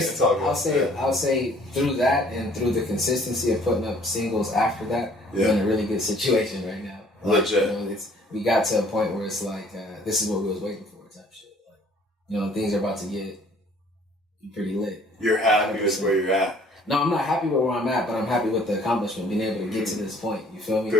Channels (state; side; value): normal; both; correlation 0.57